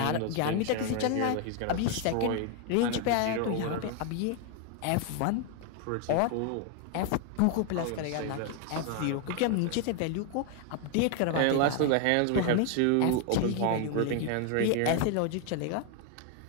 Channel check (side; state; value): both; different; correlation 0.01